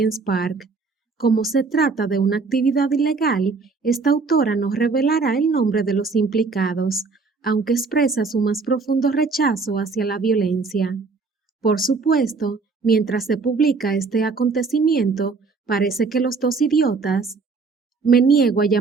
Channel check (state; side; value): quieter; left; 4.4 dB